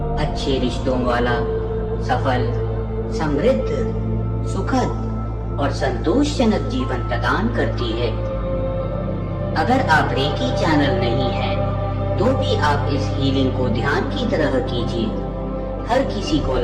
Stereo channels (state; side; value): identical; both; correlation 1.00